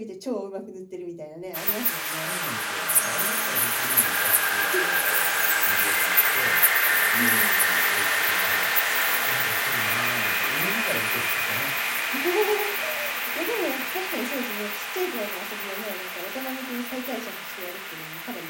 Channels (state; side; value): identical; both; correlation 1.00